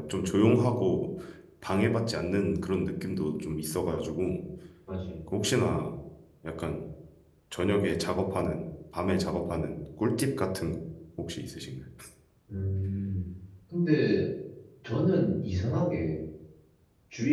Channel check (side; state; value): both; identical; correlation 1.00